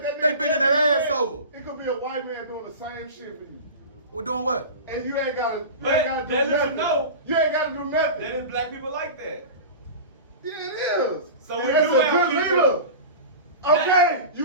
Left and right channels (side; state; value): both; inverted; correlation -0.31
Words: they bending their ass over. It could be a white man doing the same shit for you. We're doing what? And you ain't gotta But do that nothing. know. You ain't gotta do nothing. There is black people like that. Yeah, it is. So And we that's do a have good people- leader. Okay,